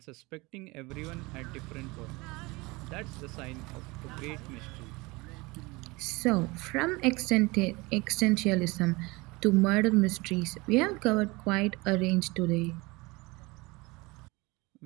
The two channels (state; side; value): quieter; left; 23.9 dB